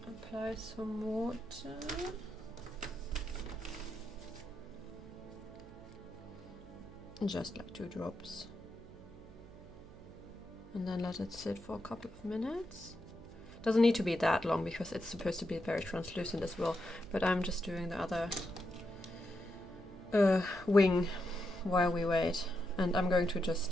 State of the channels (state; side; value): noise; right; hum, 18 dB below the sound